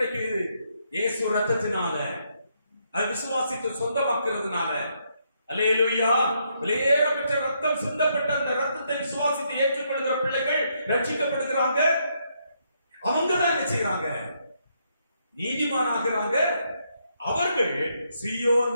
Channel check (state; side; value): inverted; both; correlation -0.76